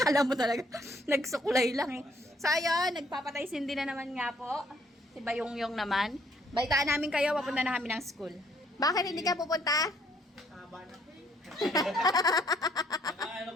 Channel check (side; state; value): both; normal; correlation 0.66